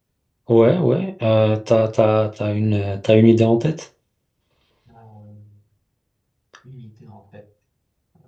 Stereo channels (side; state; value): both; identical; correlation 1.00